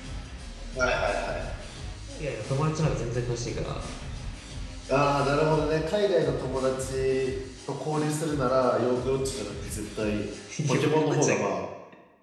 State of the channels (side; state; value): both; identical; correlation 1.00